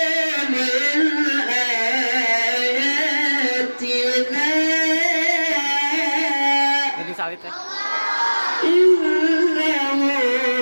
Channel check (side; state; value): both; inverted; correlation -1.00